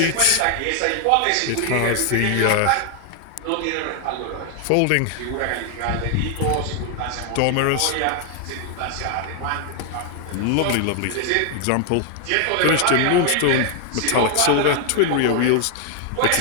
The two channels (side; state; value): both; different; correlation 0.00